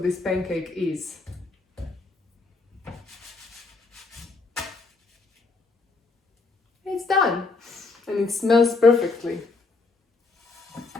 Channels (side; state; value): right; quieter; 3.8 dB